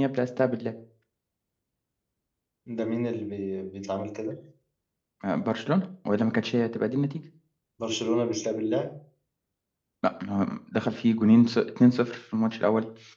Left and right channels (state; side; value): identical; both; correlation 1.00